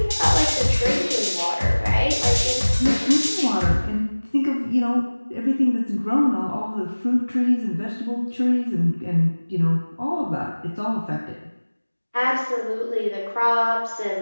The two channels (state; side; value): inverted; both; correlation -1.00